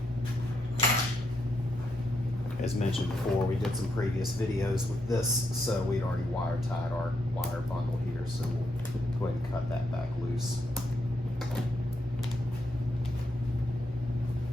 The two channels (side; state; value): both; normal; correlation 0.80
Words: As mentioned before, we did some previous videos with this, so we'd already wire tied our wire bundle here, so we'll go ahead and cut that back loose.